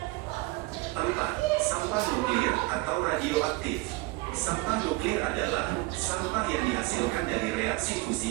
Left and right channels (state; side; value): quieter; left; 22.4 dB